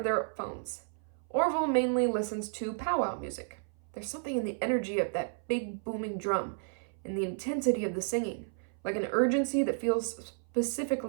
their phones. Orville mainly listens to powwow music. There's something in the energy of that big booming drum and the intensity of the singing, like an urgency that feels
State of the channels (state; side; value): silent; left; 56 dB below the other